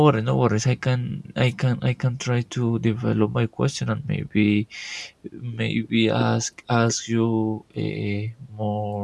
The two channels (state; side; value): identical; both; correlation 1.00